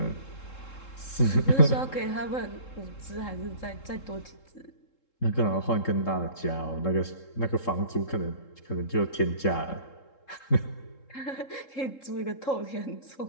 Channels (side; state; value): right; late; 3.7 ms